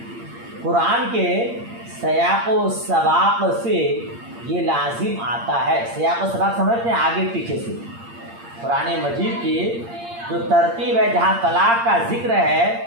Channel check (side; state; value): left; late; 8.7 ms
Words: قرآن کے سیاق و سباق سے یہ لازم آتا ہے۔ سیاق و سباق سمجھتے ہیں آگے پیچھے سے، قرآن مجید کی جو ترتیب ہے جہاں طلاق کا ذکر ہے